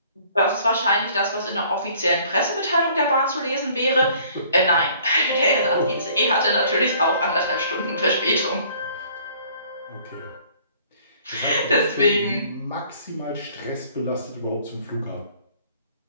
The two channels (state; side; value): inverted; both; correlation -0.56